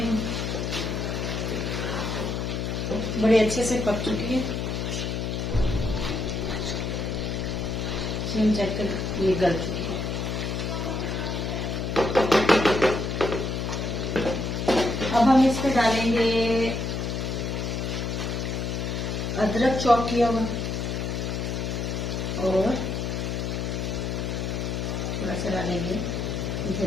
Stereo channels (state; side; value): noise; left; hum, 2 dB below the sound